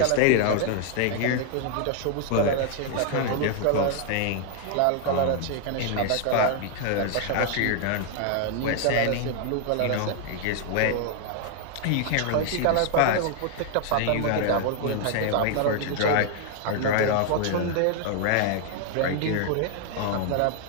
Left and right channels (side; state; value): both; different; correlation 0.00